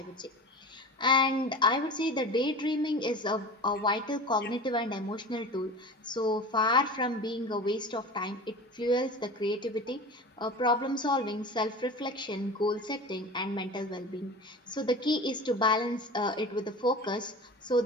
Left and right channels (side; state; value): both; normal; correlation 0.34